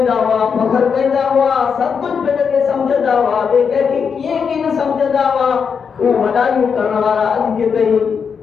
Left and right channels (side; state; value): right; quieter; 6.3 dB